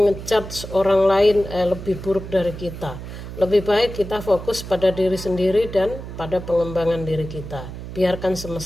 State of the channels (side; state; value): right; noise; hum, 10 dB below the sound